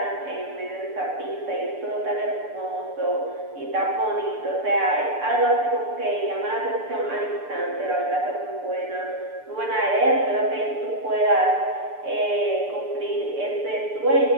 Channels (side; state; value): left; late; 6.8 ms